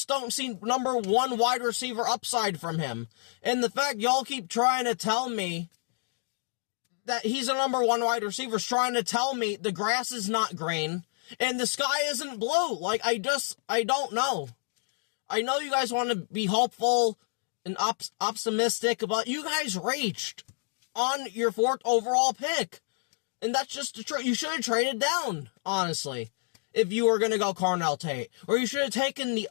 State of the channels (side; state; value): right; silent; 58 dB below the other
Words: don't see number 1 wide receiver upside from him. And the fact y'all keep trying to tell me that he's a number 1 wide receiver is trying to tell me the grass is not green and the sky isn't blue. Like, I don't know. I know you guys want to be hopeful and optimistic, but you guys reached on your 4th overall pick. And that's just the truth. You should have traded down, honestly, if you were going to go Carnell Tate. Or you should have taken